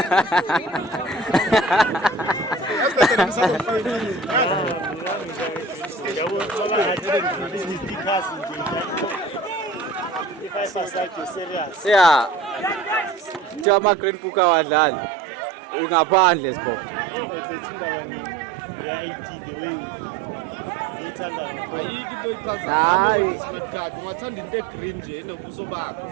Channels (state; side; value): drops out; left; at 13.7 s